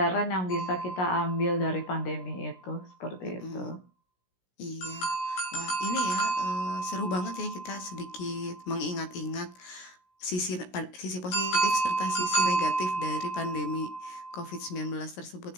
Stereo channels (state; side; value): late; right; 16 ms